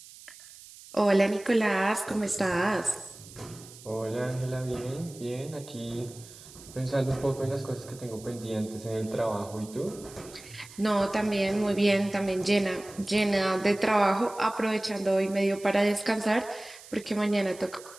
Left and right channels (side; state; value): right; noise; hiss, 19 dB below the sound